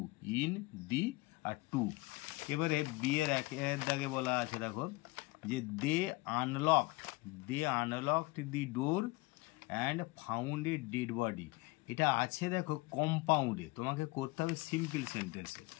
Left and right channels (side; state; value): right; quieter; 23.0 dB